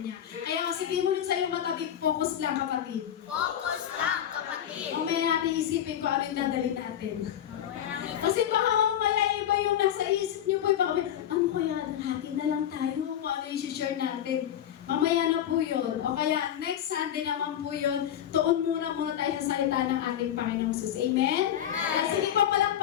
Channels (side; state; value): right; quieter; 10.4 dB